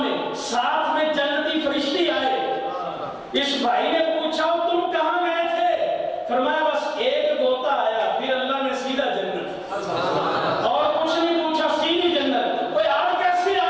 ساتھ میں جنتی فرشتے آئے. اس بھائی نے پوچھا تم کہاں گئے تھے؟ فرمایا بس ایک غوطہ آیا, پھر اللہ نے سیدھا جنت, اور کچھ نہیں پوچھا, سیدھی جنت. کوئی آج کیسے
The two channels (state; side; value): identical; both; correlation 1.00